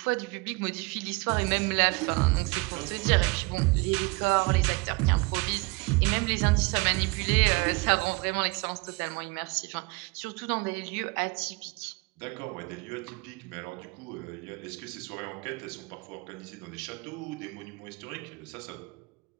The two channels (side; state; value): left; quieter; 27.2 dB